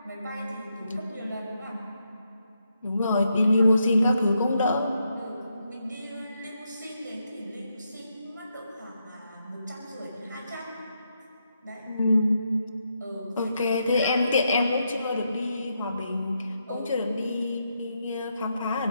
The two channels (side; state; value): both; inverted; correlation -0.82